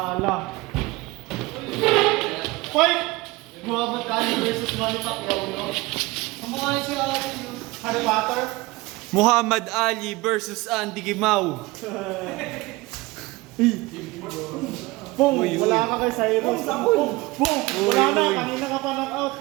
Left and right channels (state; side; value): quieter; left; 21.8 dB